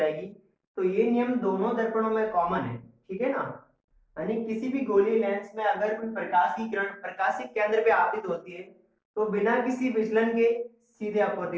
तो ये नियम दोनों दर्पणों में कॉमन है, ठीक है ना। यानी किसी भी गोलीय लेंस में अगर कोई प्रकाश की किरण प्रकाशिक केंद्र पे आपतित होती है तो बिना किसी विचलन के सीधे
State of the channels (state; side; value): identical; both; correlation 1.00